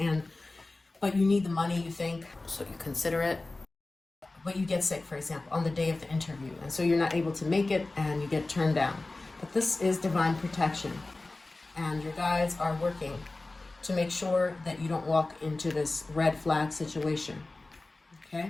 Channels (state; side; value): quieter; right; 3.1 dB